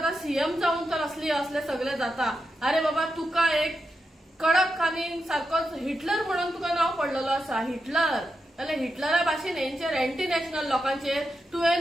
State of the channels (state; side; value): normal; both; correlation 0.87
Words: सीएम जावन तर असले सगळे जाता, अरे बाबा तुका एक कडक आनी सारकोच हिटलर म्हणून तुका नांव पडलेलो आसा, हिटलर जाल्यार हिटलरा भाशेन हेंचेर एंटी नॅशनल लोकांचेर